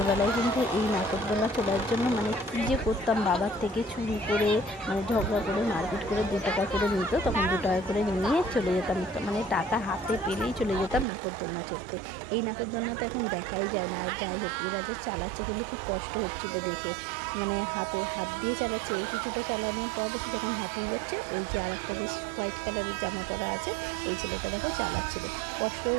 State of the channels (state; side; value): drops out; left; at 11.1 s